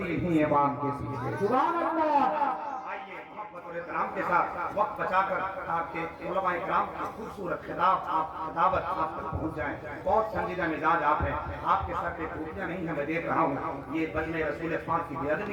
انہی امام کے پیچھے۔ سبحان اللہ۔ آئیے محبت اور احترام کے ساتھ وقت بچا کر آپ کے علماء کرام کی خوبصورت خطابت آپ تک پہنچ جائیں۔ بہت سنجیدہ مزاج آپ ہیں، آپ کے سر پہ ٹوپیاں نہیں ہیں، میں دیکھ رہا ہوں، یہ بجنے رسول پاک کی بے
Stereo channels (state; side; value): identical; both; correlation 1.00